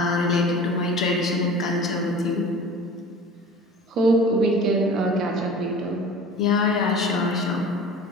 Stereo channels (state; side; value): normal; both; correlation 0.41